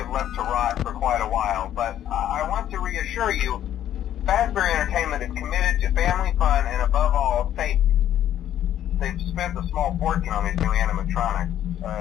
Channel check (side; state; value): right; quieter; 11.2 dB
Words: left to rot for quite a while, but I want to reassure you, Fazbear Entertainment is committed to family fun and above all, safety. They've spent a small fortune on these new animatronics.